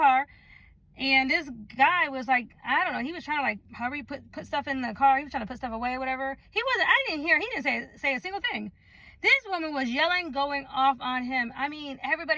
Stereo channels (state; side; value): identical; both; correlation 1.00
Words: And this guy was like, I don't know, he was trying to like, however you put stuff in the car. He was trying to put stuff away or whatever. He didn't say a single thing. This woman was yelling, going off on him. I mean,